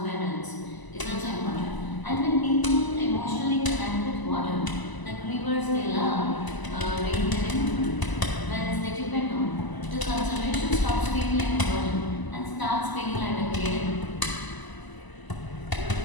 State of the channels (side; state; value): right; late; 1.0 ms